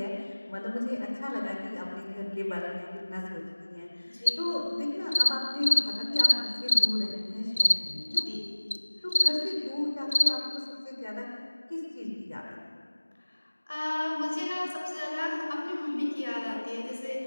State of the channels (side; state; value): both; inverted; correlation -1.00